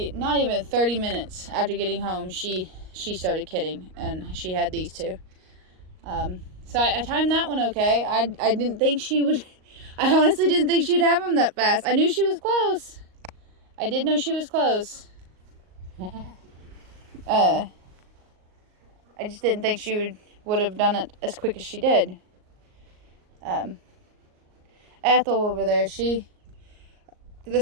not even 30 minutes after getting home, she started kidding, and she had these two. So I timed that one okay. I didn't think she would. I honestly didn't think she'd have them that fast. I knew she was close. I did know she was close. I just didn't think she would have done it as quick as she did. Ethel over there,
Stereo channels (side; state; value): left; late; 38 ms